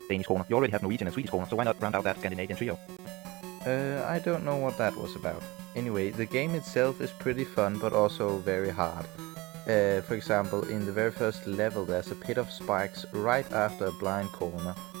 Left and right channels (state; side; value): quieter; left; 22.4 dB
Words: Danish kroner. You already have Norwegian and Swedish kroner, so why not round out that Scandinavian trio? I don't know what that was about. Anyway, the game itself is pretty fun, but also very hard. For example, in the very first level there's a pit of spikes right after a blind corner,